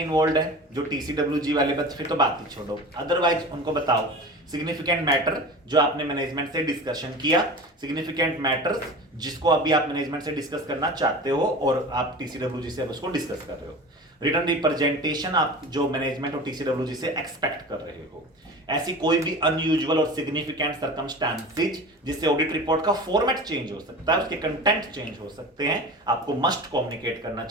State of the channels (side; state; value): both; normal; correlation 0.34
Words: इन्वॉल्व है जो टीसीडब्ल्यूजी वाले बच्चे, फिर तो बात ही छोड़ो, अदरवाइज उनको बताओ सिग्निफिकेंट मैटर जो आपने मैनेजमेंट से डिस्कशन किया, सिग्निफिकेंट मैटर्स जिसको अभी आप मैनेजमेंट से डिस्कस करना चाहते हो और आप टीसीडब्ल्यूजी से अब उसको डिस्कस कर रहे हो, रिटर्न रिप्रेजेंटेशन आप जो मैनेजमेंट और टीसीडब्ल्यूजी से एक्सपेक्ट कर रहे हो, ऐसी कोई भी अनयूजुअल और सिग्निफिकेंट सर्कमस्टांसेस जिससे ऑडिट रिपोर्ट का फॉर्मेट चेंज हो सकता है, उसके कंटेंट चेंज हो सकते हैं, आपको मस्ट कम्युनिकेट करना